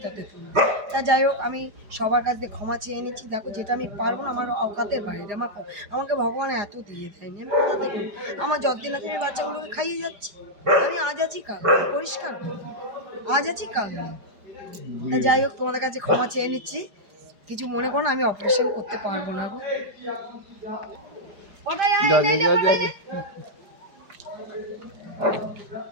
তুলব? তা যাই হোক, আমি সবার কাছ থেকে ক্ষমা চেয়ে নিচ্ছি। দেখো, যেটা আমি পারবো না, আমার অকাতের বাইরে, আমাকে ভগবান এত দিয়ে দেয়নি, আমি কোথা থেকে? আমার যতদিন আছে আমি বাচ্চাগুলোকে খাইয়ে যাচ্ছি। আমি আজ আছি কাল পরিষ্কার, আজ আছি কাল নেই। তা যাই হোক, তোমাদের কাছে ক্ষমা চেয়ে নিচ্ছি, কিছু মনে করো না, আমি অপারেশন করতে পারবো না গো।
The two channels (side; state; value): left; late; 4.9 ms